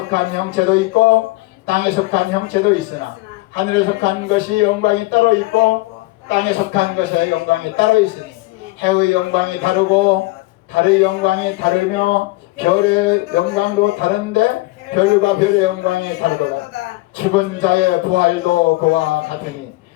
형체도 있고 땅에 속한 형체도 있으나 하늘에 속한 것이 영광이 따로 있고 땅에 속한 것의 영광이 따로 있으니 해의 영광이 다르고 달의 영광이 다르며 별의 영광도 다른데 별과 별의 영광이 다르도다. 죽은 자의 부활도 그와 같으니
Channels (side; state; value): right; quieter; 20.9 dB